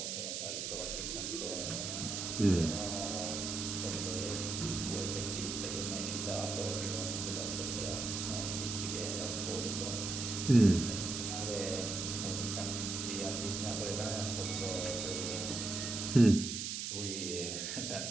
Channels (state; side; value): noise; right; hiss, 3 dB below the sound